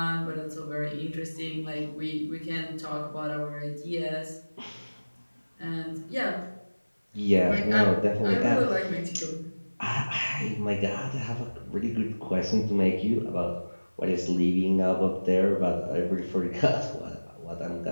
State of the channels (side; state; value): both; inverted; correlation -1.00